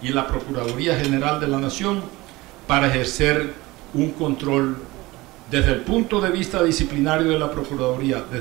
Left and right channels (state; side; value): quieter; left; 20.5 dB